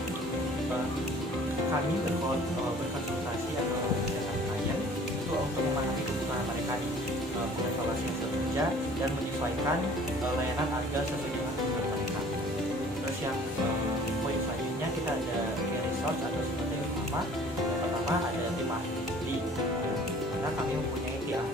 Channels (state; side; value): normal; both; correlation 0.50